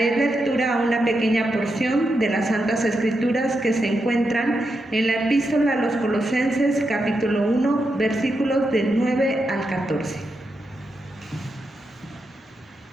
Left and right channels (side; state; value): both; normal; correlation 0.85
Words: lectura a una pequeña porción de las Santas Escrituras que se encuentran en la Epístola a los Colosenses, capítulo 1, versículos del 9 al 14.